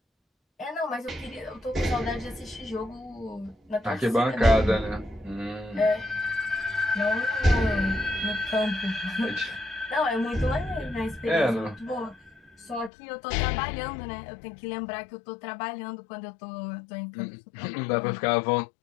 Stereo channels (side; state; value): right; drops out; at 12.9 s